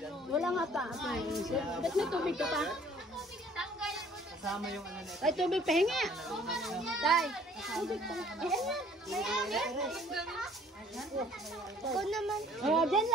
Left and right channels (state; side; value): normal; both; correlation 0.57